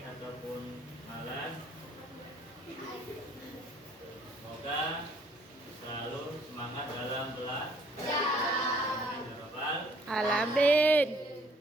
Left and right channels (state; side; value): normal; both; correlation 0.61